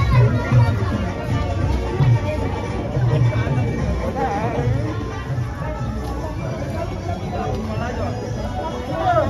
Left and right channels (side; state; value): both; identical; correlation 1.00